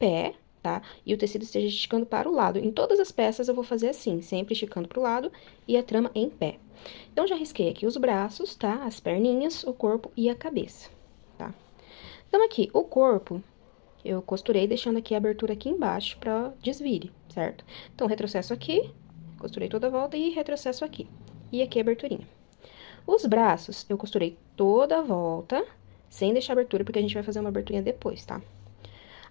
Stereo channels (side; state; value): right; quieter; 39.4 dB